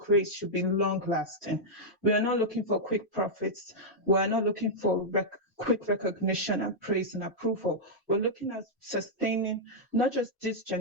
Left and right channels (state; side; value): normal; both; correlation -0.06